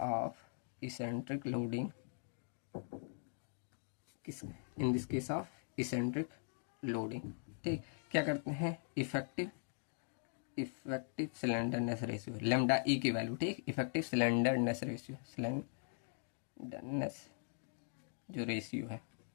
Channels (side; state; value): right; silent; digital silence